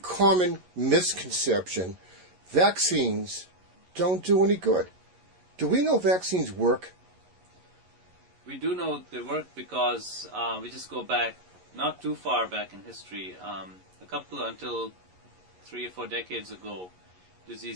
misconception, vaccines don't do any good. Do we know vaccines work? We do know they work because we just go back, not too far back in history, until 3 or 4 decades ago,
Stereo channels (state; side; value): late; left; 11 ms